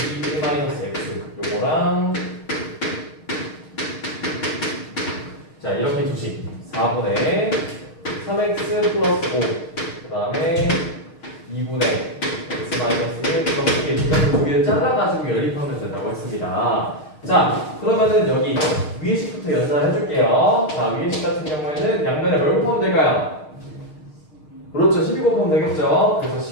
1-x 요거랑, 자, 이렇게 두식 4분의 3x 플러스 5, 그 다음에 2분의 x 마이너스 1 플러스 1, 이렇게 두 개를 잘라가지고 연립하면 된다고 했습니다. 자, 그러면은 여기 위에 식부터 연산을 해줄게요. 자, 위에 식 같은 경우에는 양면에 뭘 곱하면 될까요? 그렇죠, 12 곱하면 되겠죠. 그래서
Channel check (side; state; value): right; late; 6.5 ms